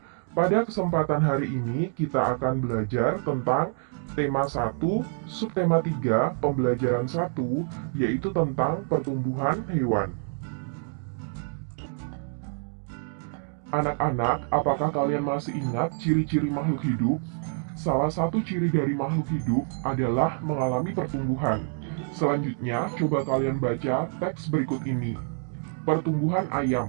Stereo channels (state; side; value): silent; left; 56 dB below the other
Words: Pada kesempatan hari ini, kita akan belajar tentang tema 1, subtema 3, pembelajaran 1, yaitu tentang pertumbuhan hewan. Anak-anak, apakah kalian masih ingat ciri-ciri makhluk hidup? Salah satu ciri dari makhluk hidup adalah mengalami pertumbuhan. Selanjutnya, coba kalian baca teks berikut ini. Pertumbuhan